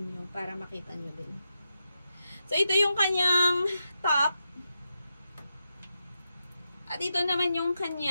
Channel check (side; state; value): both; inverted; correlation -0.87